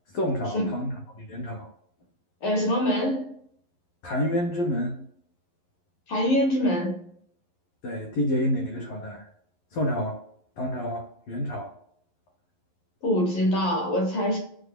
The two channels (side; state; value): right; late; 11 ms